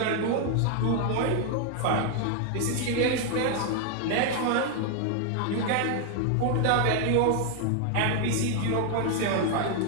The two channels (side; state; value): both; different; correlation 0.00